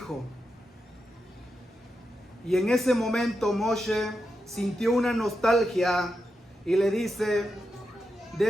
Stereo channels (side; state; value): both; normal; correlation 0.87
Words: Y en ese momento Moshe sintió una nostalgia y le dice: